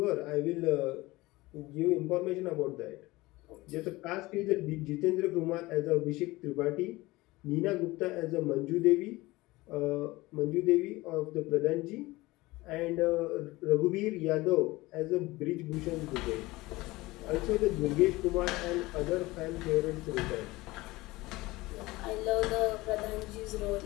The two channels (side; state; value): right; quieter; 20.3 dB